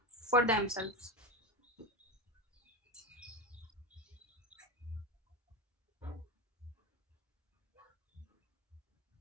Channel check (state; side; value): normal; both; correlation 0.17